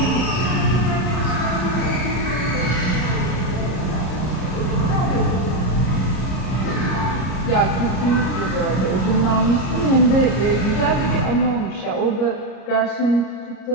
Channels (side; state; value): right; late; 33 ms